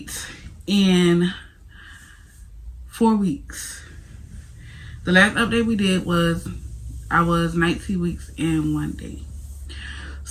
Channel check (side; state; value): both; identical; correlation 1.00